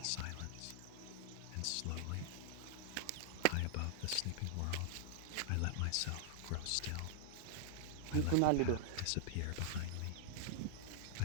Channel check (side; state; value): both; different; correlation -0.01